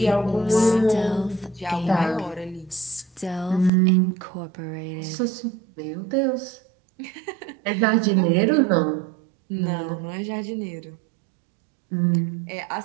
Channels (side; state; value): left; drops out; at 3.7 s